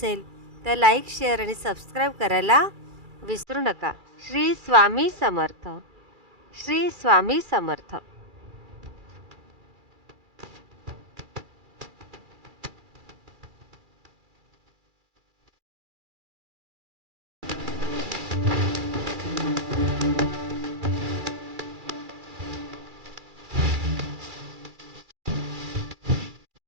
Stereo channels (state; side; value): late; left; 2.3 ms